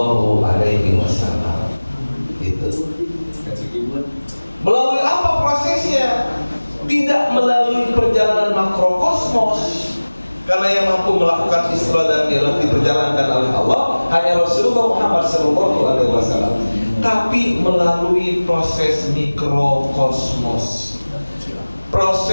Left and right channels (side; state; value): both; inverted; correlation -1.00